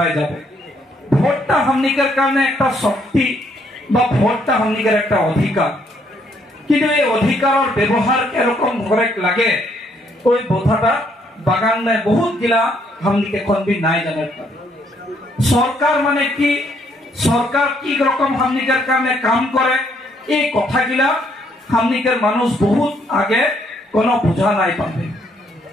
যাব ভোটটা हमनी के কারণে একটা শক্তি বা ভোটটা हमनी के একটা অধিকার কিন্তু এই অধিকারের ব্যবহার কিরকম করে লাগে ওই কথাটা বাগান में बहुत गिला हमनी के कोन भी নাই জানে सरकार माने की सरकार की रकम हमनी के কারণে কাম করে এই কথাগিলা हमनी के মানুষ बहुत आगे কোনো বুঝা নাই পাবে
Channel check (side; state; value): both; normal; correlation 0.70